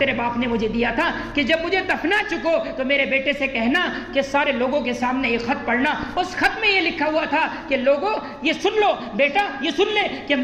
باپ نے مجھے دیا تھا کہ جب مجھے دفنا چکو تو میرے بیٹے سے کہنا کہ سارے لوگوں کے سامنے یہ خط پڑھنا. اس خط میں یہ لکھا ہوا تھا کہ لوگوں یہ سن لو, بیٹا یہ سن لے کہ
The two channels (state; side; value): identical; both; correlation 1.00